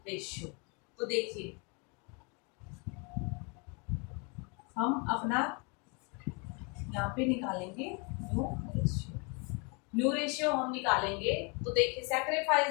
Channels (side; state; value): right; quieter; 32.7 dB